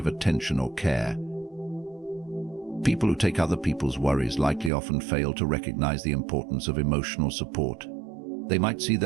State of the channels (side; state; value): left; drops out; at 4.7 s